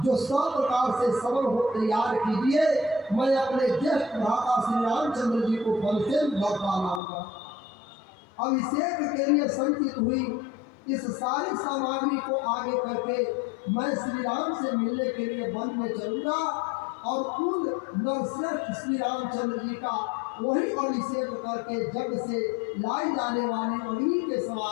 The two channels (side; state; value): right; drops out; at 7.0 s